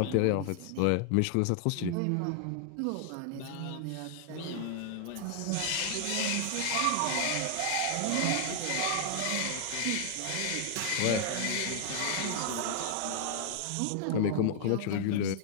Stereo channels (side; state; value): both; different; correlation 0.00